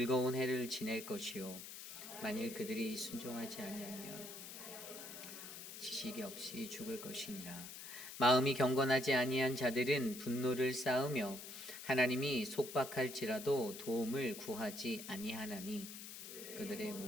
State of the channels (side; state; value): left; noise; hiss, 11 dB below the sound